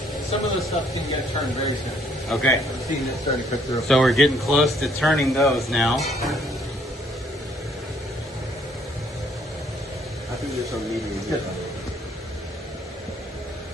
some of those stuff can get turned very soon. Okay. I'm seeing it starting to cook through. So we're getting close to turning those now. I think there's some meat in here.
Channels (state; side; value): normal; both; correlation 0.65